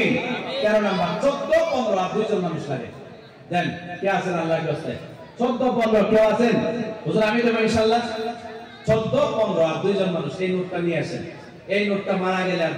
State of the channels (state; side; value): identical; both; correlation 1.00